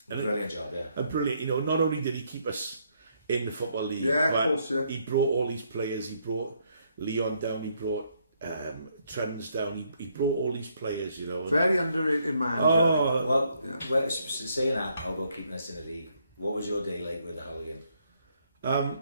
Brilliant job, A brilliant, not only did he keep us in the Football League, but he brought all these players. He brought Leon down, he brought Trends down, he brought all these players, Very underrated man. Well, saying that, about keeping us in the league, what was your day like with the Hull game?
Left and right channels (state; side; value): inverted; both; correlation -0.72